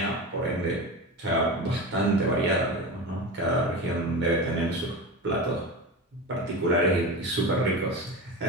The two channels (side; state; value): both; normal; correlation 0.25